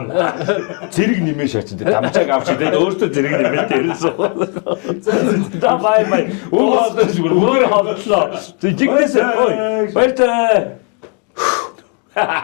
Зэрэг нэмээ шаач. Дамжааг авч тэгээд өөртөө зэрэг нэмээ дээрсэн. За Бай. Өөр хотлоо. Жигтэй. Баяртай.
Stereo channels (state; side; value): quieter; right; 36.1 dB